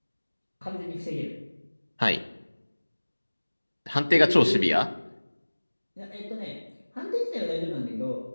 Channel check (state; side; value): inverted; both; correlation -1.00